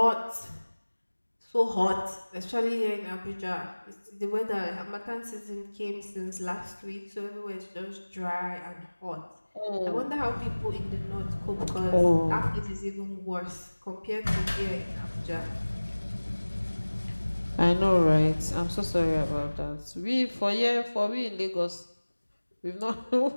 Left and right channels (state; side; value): inverted; both; correlation -1.00